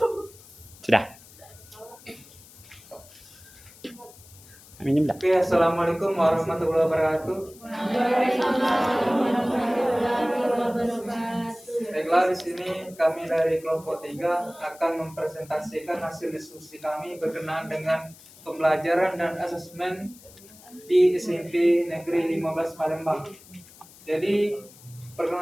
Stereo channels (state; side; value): noise; left; hiss, 22 dB below the sound